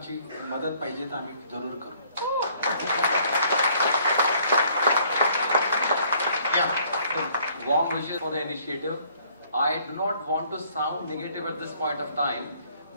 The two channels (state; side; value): inverted; both; correlation -0.62